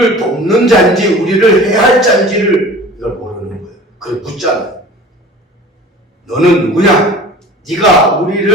돕는 자인지 우리를 해할 자인지를 이걸 모르는 거예요. 그걸 묻잖아요. 너는 누구냐? 네가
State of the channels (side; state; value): both; normal; correlation 0.42